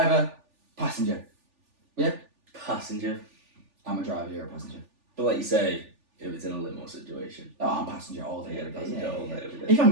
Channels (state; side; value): late; left; 3.4 ms